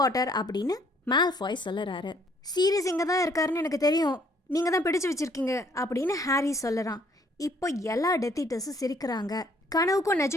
பாட்டர் அப்படின்னு மால்ஃபாய் சொல்லறாரு. சீரியஸ் இங்கே தான் இருக்காருன்னு எனக்கு தெரியும், நீங்கள் தான் பிடிச்சு வச்சிருக்கீங்க அப்படின்னு ஹாரி சொல்லறான். இப்போ எல்லா டெத் ஈட்டர்ஸும் சிரிக்கிறாங்க. கனவுக்கும்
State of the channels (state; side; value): normal; both; correlation 0.63